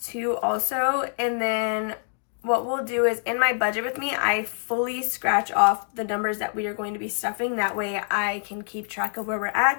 2 also, and then what we'll do is in my budget with me, I fully scratch off the numbers that we are going to be stuffing. That way I can keep track of where we're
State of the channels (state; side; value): silent; right; digital silence